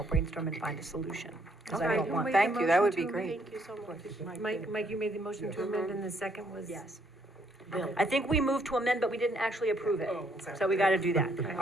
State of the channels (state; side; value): normal; both; correlation 0.69